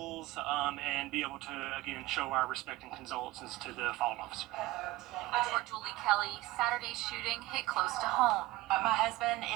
and be able to again show our respect and condolences to the fallen officer. For Julie Kelly, Saturday's shooting hit close to home. My husband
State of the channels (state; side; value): quieter; left; 18.8 dB